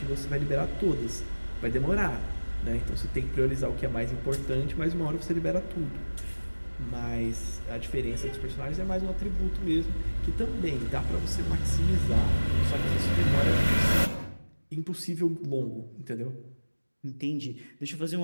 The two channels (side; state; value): both; inverted; correlation -1.00